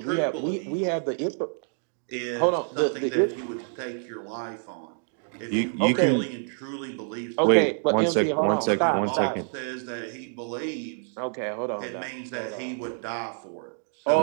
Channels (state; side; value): silent; left; digital silence